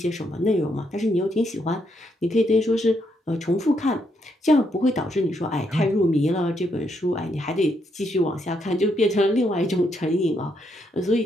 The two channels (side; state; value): both; normal; correlation 0.76